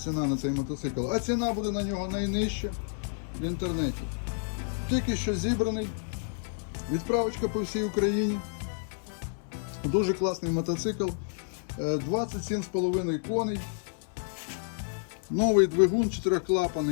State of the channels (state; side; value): silent; right; 58 dB below the other